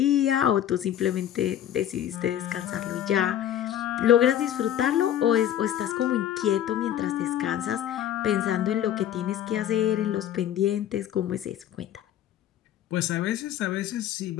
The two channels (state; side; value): quieter; right; 11.1 dB